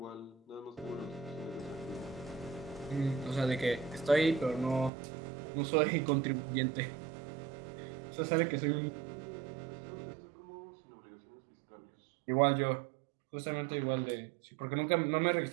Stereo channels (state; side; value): drops out; left; at 4.9 s